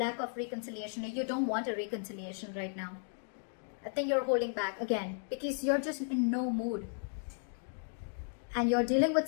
of reconciliation. You don't want a reconciliation right now. I think you're holding back again because you're just in no mood. And you're dealing with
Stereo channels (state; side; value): silent; right; 54 dB below the other